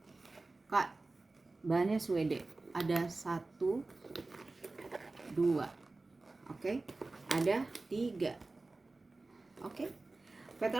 Kak, bahannya Swede. Ada 1 2, oke, ada 3. Oke,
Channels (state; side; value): quieter; left; 3.3 dB